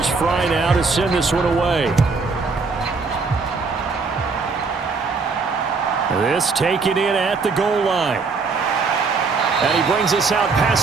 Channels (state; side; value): quieter; left; 4.5 dB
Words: Fry now to send this one away. This taken in at the goal line. And he brings us out